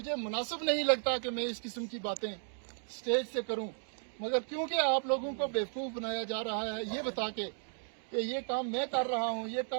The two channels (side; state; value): left; silent; digital silence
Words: मुनासिब नहीं लगता कि मैं इस किस्म की बातें स्टेज से करूं, मगर क्योंकि आप लोगों को बेवकूफ़ बनाया जा रहा है ये बता के कि ये काम मैं कर रहा हूं, ये